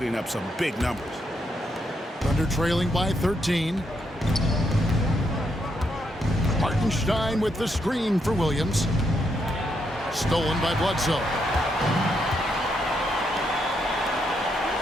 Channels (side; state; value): both; normal; correlation 0.78